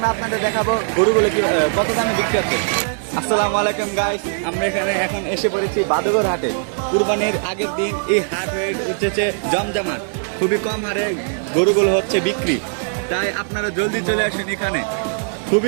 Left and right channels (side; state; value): left; silent; digital silence